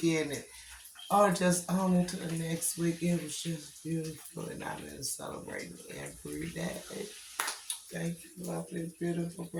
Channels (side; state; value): both; identical; correlation 1.00